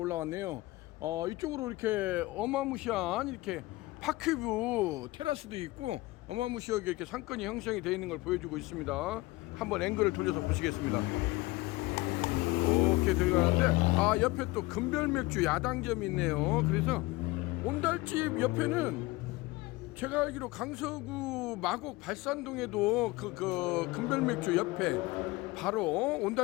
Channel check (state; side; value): quieter; right; 21.1 dB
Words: 이쪽으로 이렇게 어마무시한 이렇게 파크뷰 테라스도 있고 어마무시하게 이렇게 상권이 형성이 되어 있는 걸 보여주고 있습니다. 한번 앵글을 돌려서 보시겠습니다. 이렇게 들어가는데 옆에 또 금별맥주 야당점이 있네요. 그래서 온달집 옆에는 제가 알기로 강서구 마곡 발산동에도 그 금별맥주 옆에 바로